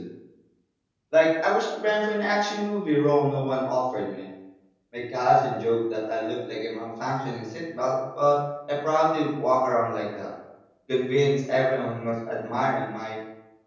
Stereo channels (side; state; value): both; identical; correlation 1.00